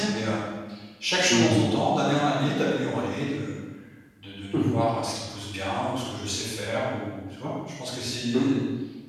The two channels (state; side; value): identical; both; correlation 1.00